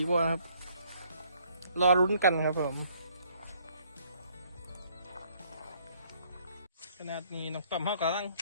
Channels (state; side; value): inverted; both; correlation -0.64